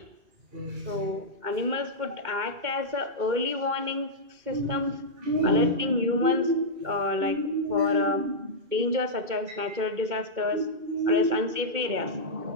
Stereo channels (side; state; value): left; late; 2.2 ms